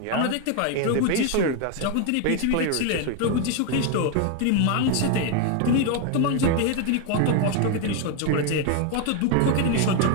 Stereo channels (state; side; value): different; both; correlation 0.01